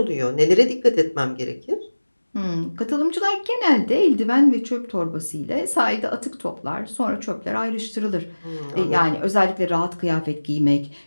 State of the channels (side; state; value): both; inverted; correlation -1.00